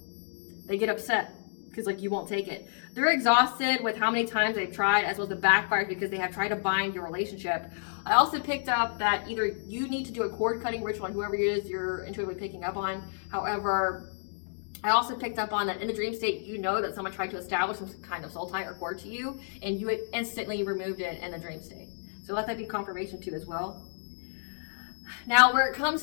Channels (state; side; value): silent; right; digital silence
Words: They get upset because, like, you won't take it. They're exhausted with how many times they've tried, as well as the backfired, because they have tried to bind your relationship. I also picked up that either you need to do a cord cutting ritual on whoever it is you're intuitively picking up on. However, I also picked up on that in the dream state, you know that someone tried to establish some kind of soul tie or cord to you, and you instantly removed it in the dream state. So let that be confirmation too as well. Now, where it